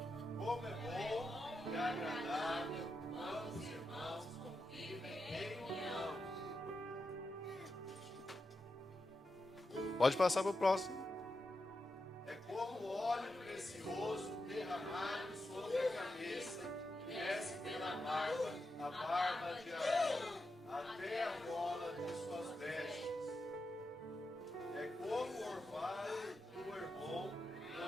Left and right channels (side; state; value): both; normal; correlation 0.87